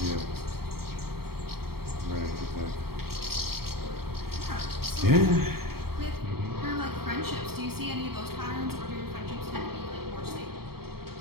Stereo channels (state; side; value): late; left; 0.95 ms